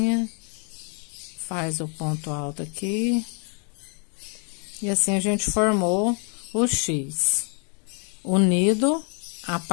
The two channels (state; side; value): quieter; right; 39.7 dB